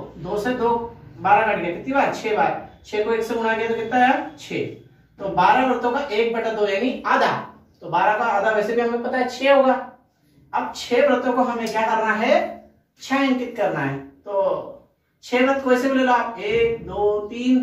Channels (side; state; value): both; identical; correlation 1.00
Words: 2 से 2 12 कट गया, कितनी बार? 6 बार। 6 को 1 से गुणा किया तो कितना आया? 6। तो 12 व्रतों का 1/2 यानी आधा, तो 12 का आधा वैसे भी हमें पता है 6 होगा। अब 6 व्रतों को हमें क्या करना है? छायांकित करना है। तो 6 व्रत को ऐसे भी ले लो आप, 1 2